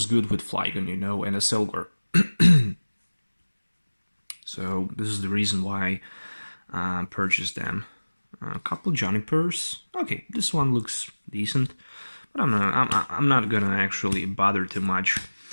good with Flygon, you know, and a Silver. So this is the reason why I purchased them. A couple Junipers. Okay, this one looks decent, but I'm not gonna actually bother too much.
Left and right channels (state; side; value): inverted; both; correlation -1.00